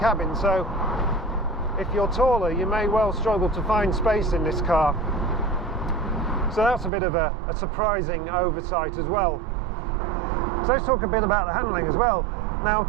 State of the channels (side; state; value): left; drops out; at 6.9 s